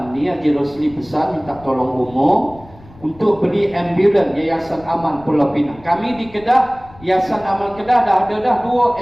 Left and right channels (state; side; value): noise; left; rumble, 23 dB below the sound